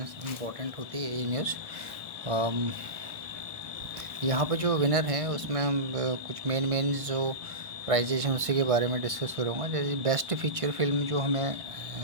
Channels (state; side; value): late; left; 1.5 ms